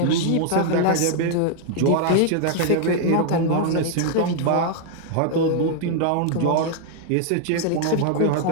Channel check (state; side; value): different; both; correlation 0.00